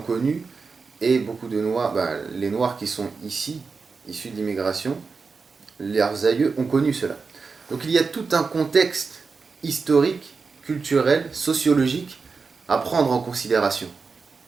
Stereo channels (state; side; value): quieter; left; 4.8 dB